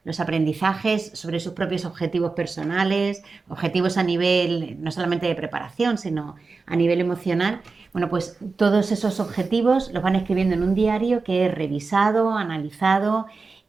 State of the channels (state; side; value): quieter; left; 4.2 dB